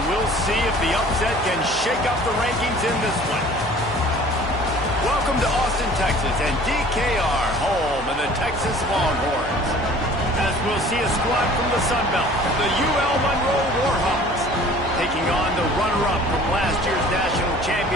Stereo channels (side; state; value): right; noise; hum, 15 dB below the sound